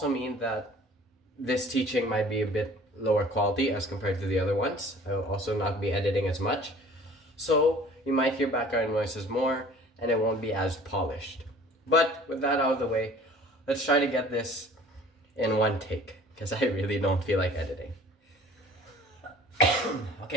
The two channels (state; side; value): normal; both; correlation 0.49